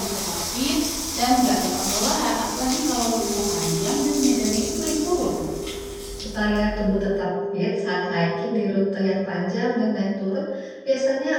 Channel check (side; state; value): both; identical; correlation 1.00